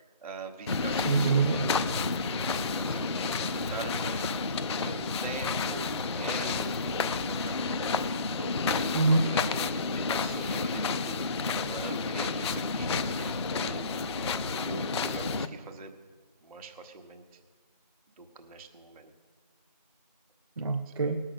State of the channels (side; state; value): both; inverted; correlation -0.44